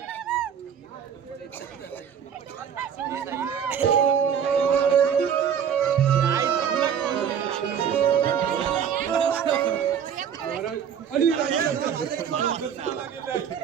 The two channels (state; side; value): quieter; left; 8.1 dB